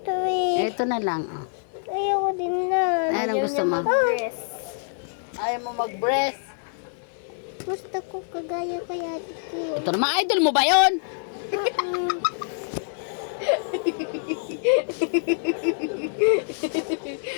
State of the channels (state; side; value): silent; right; digital silence